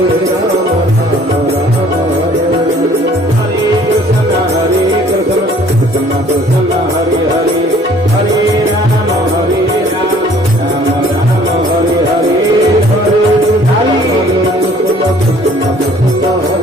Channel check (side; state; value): both; normal; correlation 0.56